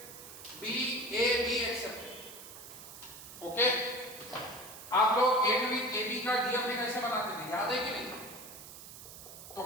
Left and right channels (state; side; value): noise; right; hiss, 14 dB below the sound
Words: AB accepted. Okay, आप लोग एंड विथ AB का DFA कैसे बनाते थे, याद है कि नहीं? तो